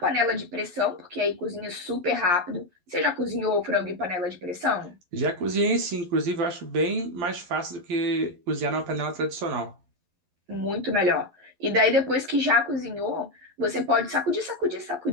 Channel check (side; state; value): left; late; 11 ms